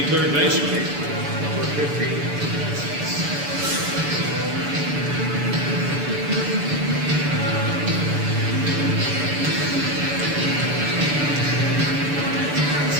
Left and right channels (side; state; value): left; late; 6.9 ms